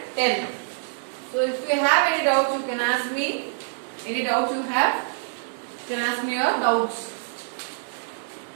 10. So if you have any doubts, you can ask me. Any doubts you have, you can ask me your doubts.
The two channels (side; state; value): left; silent; digital silence